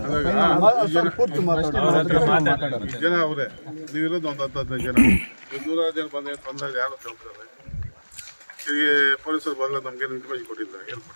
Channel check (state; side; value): inverted; both; correlation -1.00